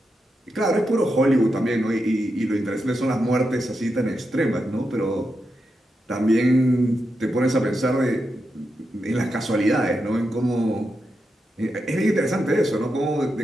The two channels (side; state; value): both; normal; correlation 0.86